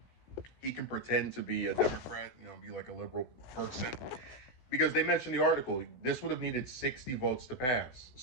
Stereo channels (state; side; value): late; right; 16 ms